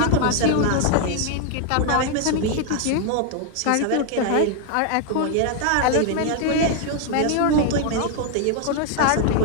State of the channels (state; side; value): different; both; correlation 0.00